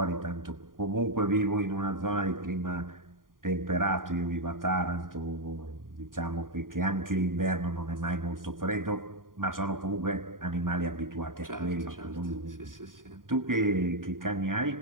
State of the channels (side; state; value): left; late; 0.91 ms